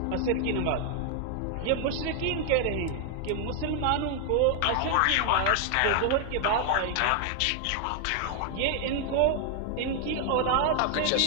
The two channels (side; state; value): both; different; correlation 0.00